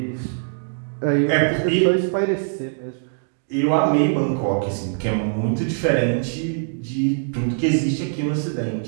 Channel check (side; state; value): left; silent; digital silence